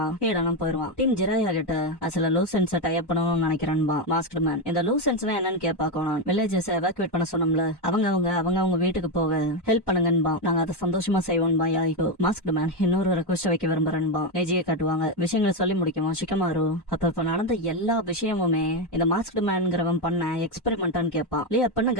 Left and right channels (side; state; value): right; late; 1.1 ms